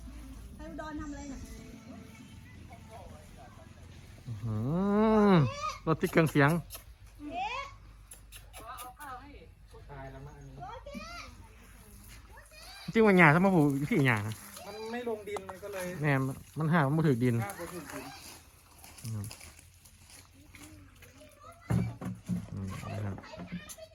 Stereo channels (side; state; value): both; identical; correlation 1.00